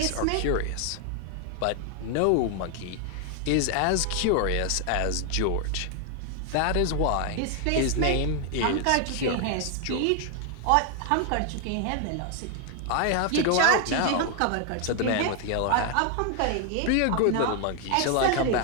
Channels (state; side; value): different; both; correlation 0.00